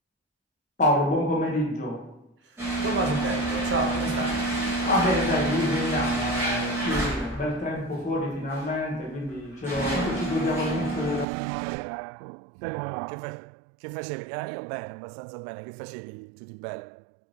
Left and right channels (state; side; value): drops out; left; at 11.2 s